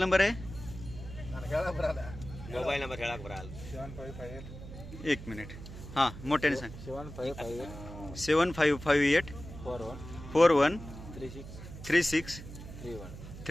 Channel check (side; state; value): right; noise; hum, 12 dB below the sound